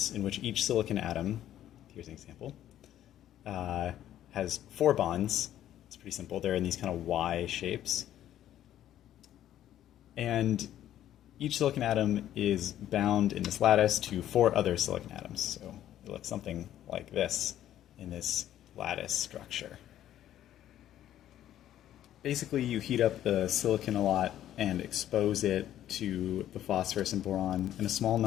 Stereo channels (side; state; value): right; quieter; 11.9 dB